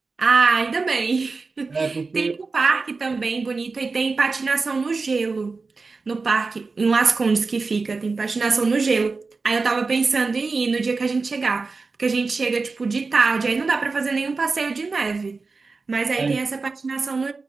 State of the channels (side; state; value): left; quieter; 4.1 dB